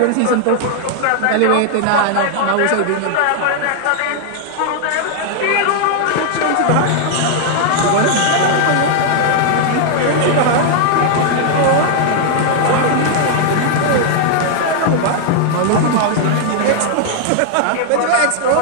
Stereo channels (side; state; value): both; different; correlation 0.00